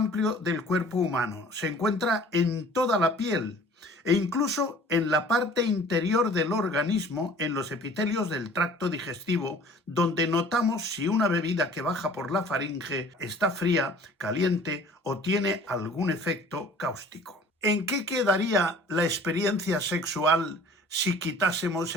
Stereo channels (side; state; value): both; normal; correlation 0.49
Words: del cuerpo humano. Se encuentra en toda la piel e incluso en la parte interior del organismo, en los epitelios del tracto digestivo, donde notamos si una bebida que baja por la faringe está fría, caliente o tiene algún efecto cáustico. ¿En qué quedaría la experiencia sexual si quitásemos